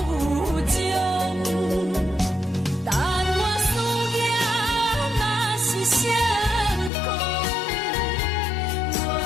情。但我思念若是相共，我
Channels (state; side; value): drops out; right; at 6.9 s